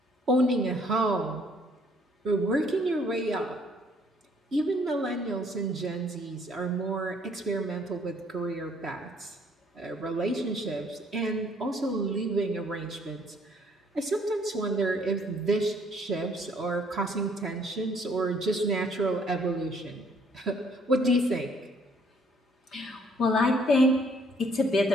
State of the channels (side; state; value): both; normal; correlation 0.63